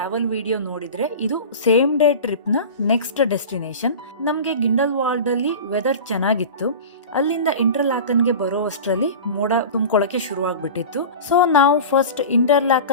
ವಿಡಿಯೋ ನೋಡಿದ್ರೆ ಇದು ಸೇಮ್ ಡೇ ಟ್ರಿಪ್ನ ನೆಕ್ಸ್ಟ್ ಡೆಸ್ಟಿನೇಷನ್. ನಮಗೆ ಗಿಂಡಲ್ವಾಲ್ಡಲ್ಲಿ ವೆದರ್ ಚೆನ್ನಾಗಿತ್ತು. ಅಲ್ಲಿಂದ ಇಂಟರ್ಲಾಕನ್ಗೆ ಬರೋ ಅಷ್ಟರಲ್ಲಿ ಮೋಡ ತುಂಬ್ಕೊಳ್ಳೋಕೆ ಶುರುವಾಗ್ಬಿಟ್ಟಿತ್ತು. ಸೊ ನಾವು ಫಸ್ಟ್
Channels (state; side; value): inverted; both; correlation -0.33